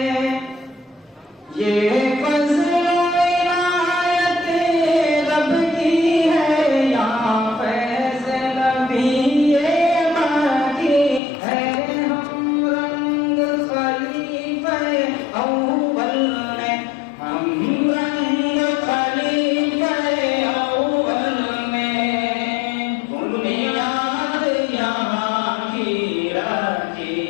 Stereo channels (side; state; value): right; drops out; at 11.2 s